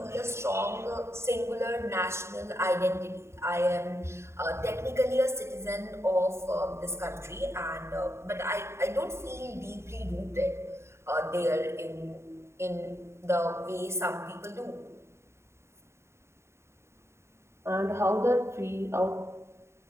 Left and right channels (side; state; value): left; late; 0.13 ms